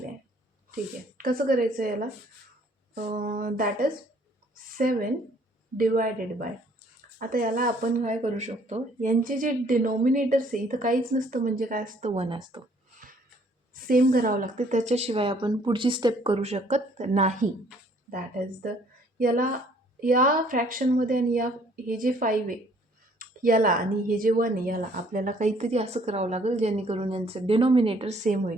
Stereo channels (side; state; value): both; normal; correlation 0.61